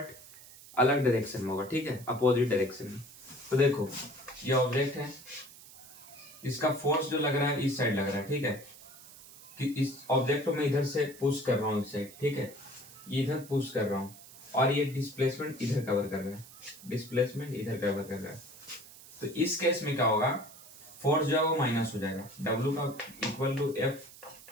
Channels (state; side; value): noise; right; hiss, 19 dB below the sound